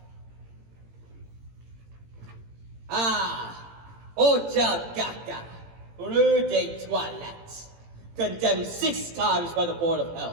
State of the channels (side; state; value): left; late; 18 ms